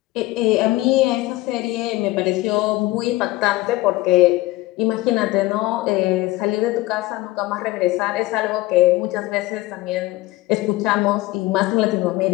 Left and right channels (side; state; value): right; quieter; 18.8 dB